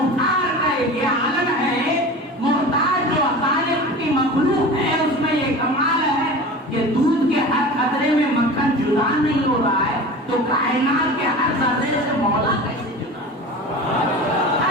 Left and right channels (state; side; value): normal; both; correlation 0.34